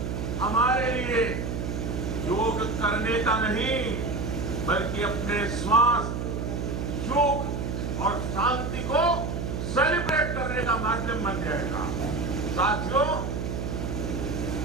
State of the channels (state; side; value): noise; right; hum, 3 dB below the sound